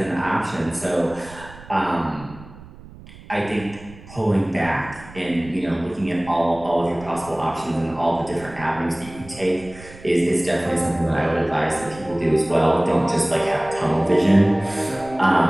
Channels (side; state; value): right; noise; rumble, 19 dB below the sound